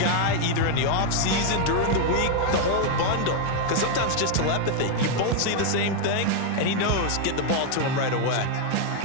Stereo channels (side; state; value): both; different; correlation 0.00